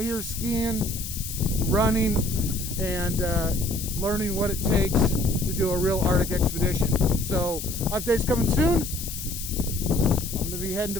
here skiing, running, and learning what it takes to do a real Arctic expedition. So updates coming soon. I'm gonna be heading to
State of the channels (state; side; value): noise; left; hiss, 8 dB below the sound